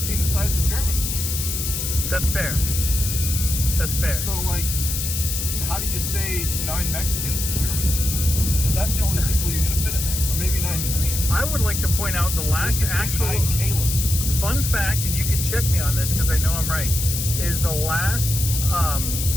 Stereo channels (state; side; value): noise; left; hiss, 3 dB below the sound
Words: the size of Germans? That's fair. That's fair. So, like, how do you say 9 Mexicans in German? Because that's the only people you're going to fit in there. Or maybe 9 Koreans. I would like to point out the last actual 9 Calebs. fun fact, and you can check me on this because I know I'm right, is the last